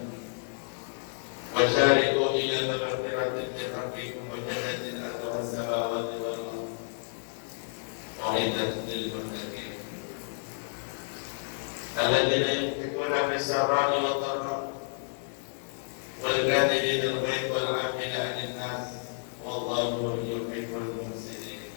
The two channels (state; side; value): silent; right; digital silence